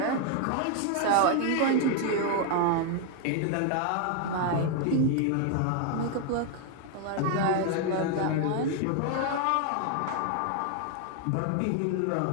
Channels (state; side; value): different; both; correlation 0.00